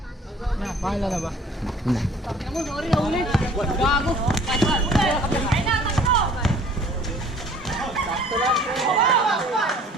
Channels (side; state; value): both; normal; correlation 0.52